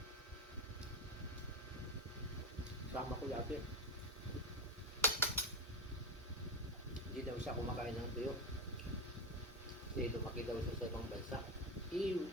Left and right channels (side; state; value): both; normal; correlation 0.14